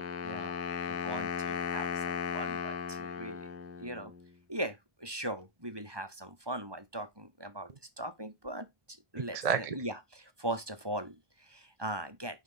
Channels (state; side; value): late; left; 1.2 ms